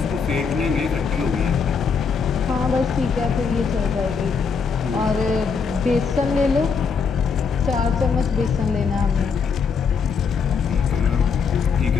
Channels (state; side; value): quieter; right; 5.7 dB